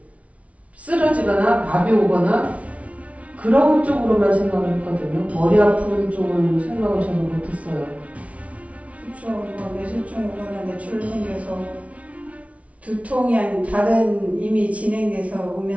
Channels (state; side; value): late; left; 0.065 ms